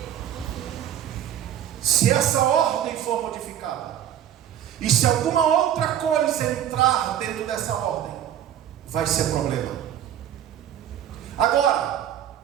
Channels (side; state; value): left; quieter; 10.6 dB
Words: Se essa ordem for modificada, e se alguma outra coisa entrar dentro dessa ordem, vai ser problema. Agora,